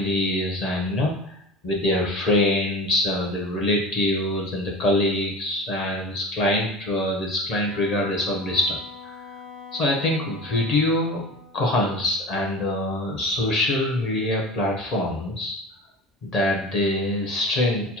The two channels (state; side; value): normal; both; correlation 0.34